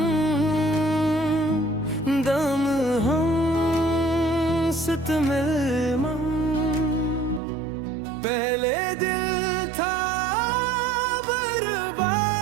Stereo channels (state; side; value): drops out; left; at 7.4 s